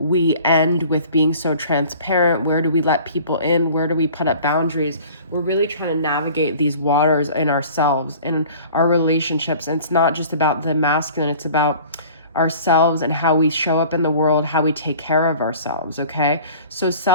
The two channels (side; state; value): both; inverted; correlation -0.46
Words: end with being so transparent, where do we let people in, where do we put up boundaries. We're really trying to navigate these waters in ourselves, in our relationships. And it's not just about the masculine, it's about ourselves and how we show up in the world, how we take care of ourselves, okay? So